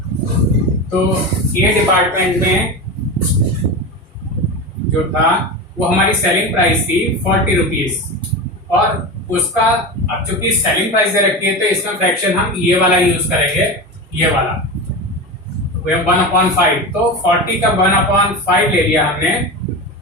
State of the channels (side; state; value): both; normal; correlation 0.24